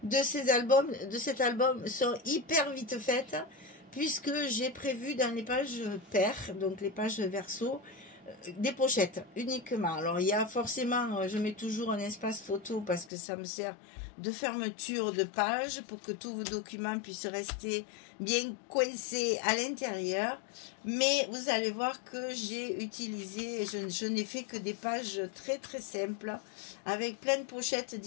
de cet album sont hyper vite faites, puisque j'ai prévu dans les pages paires, donc les pages verso, des pochettes uniquement. Alors, il y a forcément, je mets toujours un espace photo parce que ça me sert de fermeture de page pour que tous vos documents puissent rester bien coincés à l'intérieur. Mais vous allez voir que j'ai utilisé, je n'ai fait que des pages très très simples avec plein de pochettes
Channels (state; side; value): drops out; right; at 13.1 s